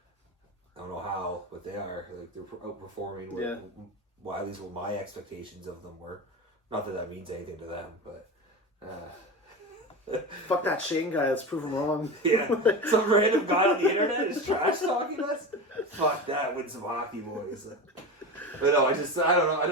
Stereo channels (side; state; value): both; normal; correlation 0.25